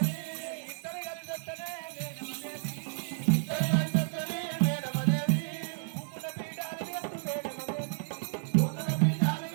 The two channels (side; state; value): left; silent; digital silence